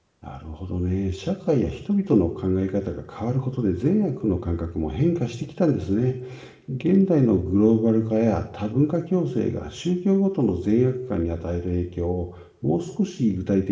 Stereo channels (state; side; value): identical; both; correlation 1.00